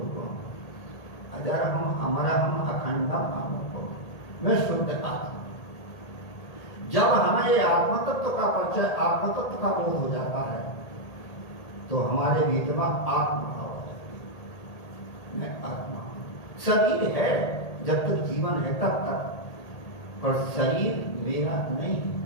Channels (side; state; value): right; late; 1.8 ms